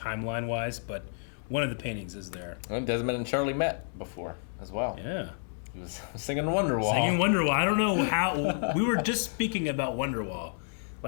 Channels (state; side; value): silent; right; 58 dB below the other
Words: but one of the paintings is there. And Desmond and Charlie met before as well. Yeah. He was singing Wonderwall. Singing Wonderwall. I don't know how... we were just speaking about Wonderwall,